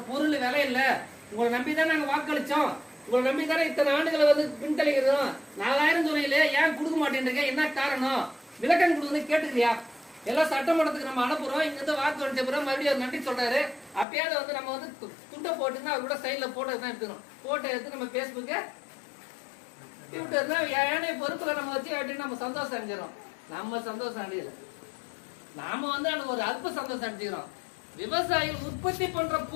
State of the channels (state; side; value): drops out; right; at 14.1 s